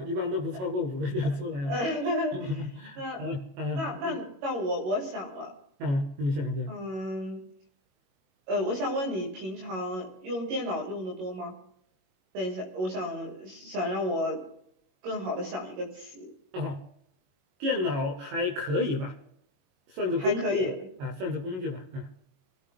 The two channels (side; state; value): left; late; 22 ms